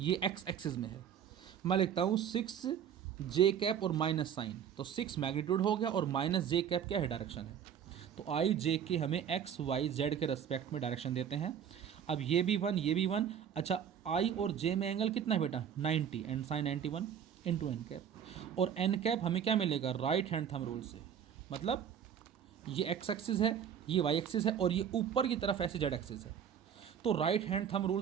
एक्स एक्सिस में है। मैं लिखता हूँ 6j कैप और माइनस साइन, तो 6 मैग्नीट्यूड हो गया और माइनस j कैप क्या है डायरेक्शन है। तो i j के हमें x y z के रेस्पेक्ट में डायरेक्शन देते हैं। अब ये भी 1 ये भी 1, अच्छा i और j में एंगल कितना है बेटा 90 and sine 91 into n cap, और एन कैप हमें क्या मिलेगा राइट हैंड थंब रूल से, मतलब ये एक्स एक्सिस है, ये वाई एक्सिस है और ये ऊपर की तरफ ऐसे जेड एक्सिस है। तो राइट हैंड थंब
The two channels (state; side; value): quieter; left; 8.5 dB